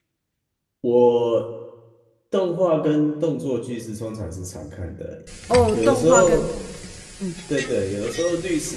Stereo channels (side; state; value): both; identical; correlation 1.00